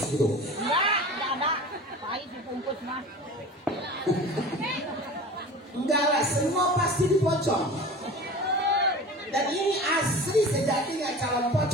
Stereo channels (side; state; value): both; normal; correlation 0.37